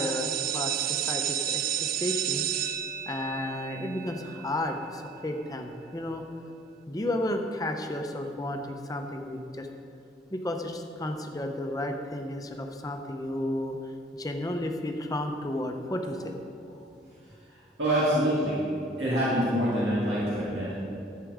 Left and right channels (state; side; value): normal; both; correlation 0.52